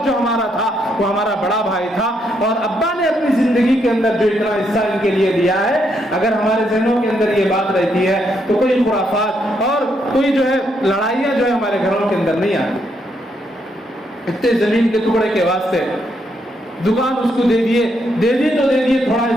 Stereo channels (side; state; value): both; normal; correlation 0.76